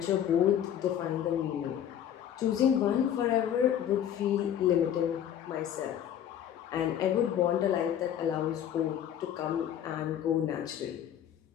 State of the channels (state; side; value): quieter; right; 10.1 dB